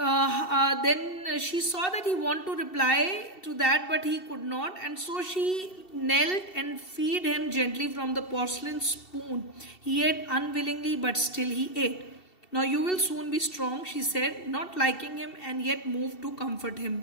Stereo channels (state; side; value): late; right; 2.7 ms